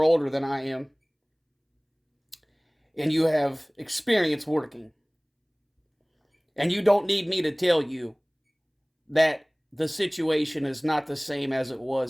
older than I am, and you have experience working. And you don't need me to tell you that the situation is not the same as it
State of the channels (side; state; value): both; identical; correlation 1.00